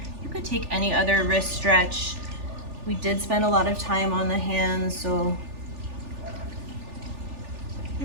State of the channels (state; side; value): late; left; 3.4 ms